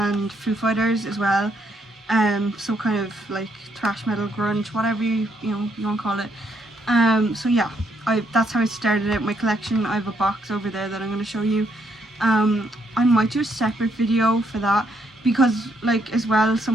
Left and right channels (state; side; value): normal; both; correlation 0.73